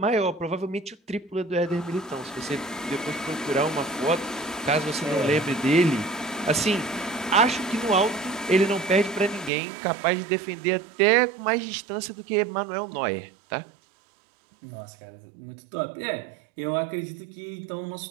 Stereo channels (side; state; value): left; drops out; at 9.5 s